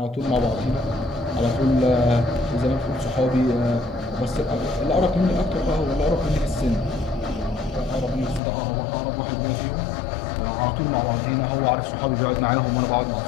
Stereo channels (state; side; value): drops out; right; at 8.4 s